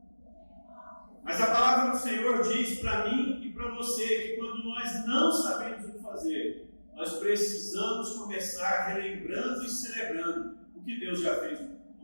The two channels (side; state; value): both; inverted; correlation -1.00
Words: Mas a palavra do Senhor diz para mim e para você que quando nós não sabemos o que fazer, nós precisamos começar relembrando e celebrando o que Deus já fez